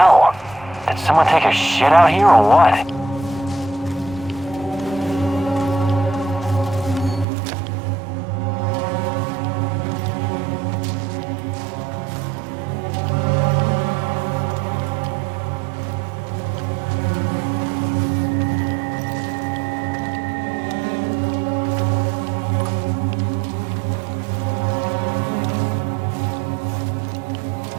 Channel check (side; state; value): left; drops out; at 7.2 s